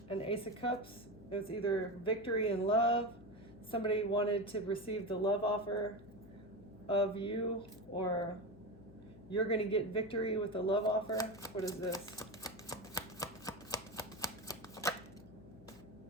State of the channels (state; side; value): noise; left; hum, 20 dB below the sound